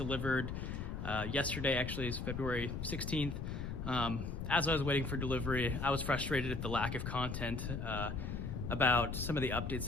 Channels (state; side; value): noise; left; rumble, 4 dB below the sound